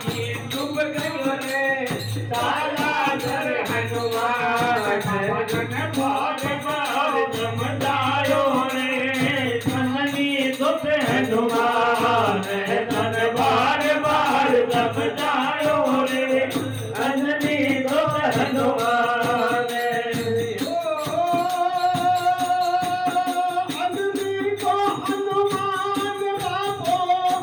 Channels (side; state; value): both; identical; correlation 1.00